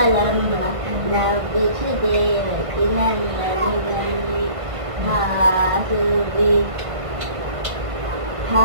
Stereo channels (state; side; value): late; left; 1.5 ms